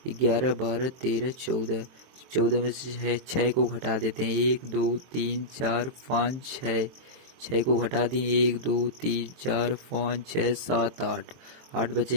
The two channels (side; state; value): left; late; 23 ms